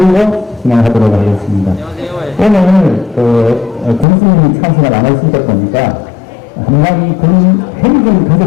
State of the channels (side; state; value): right; drops out; at 4.0 s